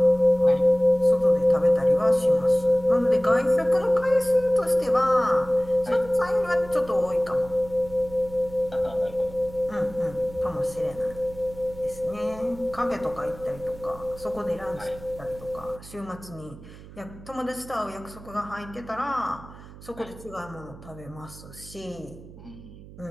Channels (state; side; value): noise; right; hum, 18 dB below the sound